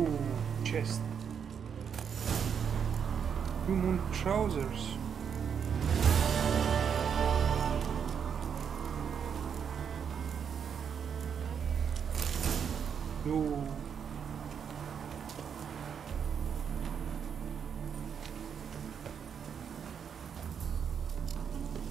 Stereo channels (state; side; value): quieter; left; 7.4 dB